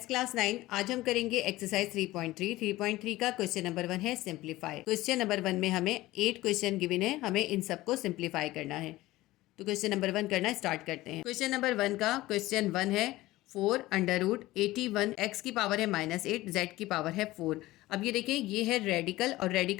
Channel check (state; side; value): quieter; right; 17.7 dB